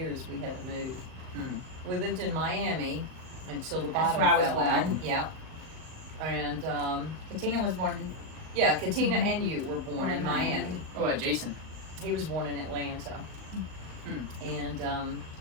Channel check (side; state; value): left; late; 38 ms